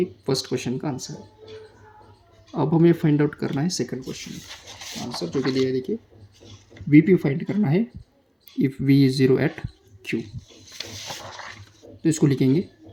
फर्स्ट क्वेश्चन का आंसर है। अब हमें फाइंड आउट करना है सेकंड क्वेश्चन का आंसर, जो कि दिया है, देखिए VP फाइंड करना है if V is 0 at Q। तो इसको लिखेंगे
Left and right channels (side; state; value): both; identical; correlation 1.00